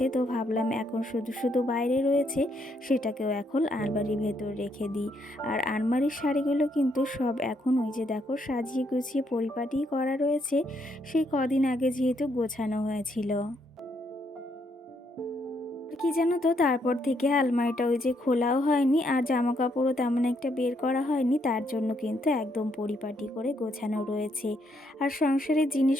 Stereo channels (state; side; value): normal; both; correlation 0.74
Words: তো ভাবলাম এখন শুধু শুধু বাইরে রয়েছে, সেটাকেও এখন আলমারির ভেতর রেখে দিই। আর আলমারির শাড়িগুলো কিন্তু সব এখন ওই যে দেখো সাজিয়ে গুছিয়ে পরিপাটি করা রয়েছে, সেই কদিন আগে যেহেতু গোছানো হয়েছিল। আর কি জানো তো, তারপর থেকে আলমারিটা ওই যে খোলাও হয়নি, আর জামা কাপড়ও তেমন একটা বের করা হয়নি, তার জন্য কিন্তু একদম পরিপাটি করে গোছানো রয়েছে। আর সংসারের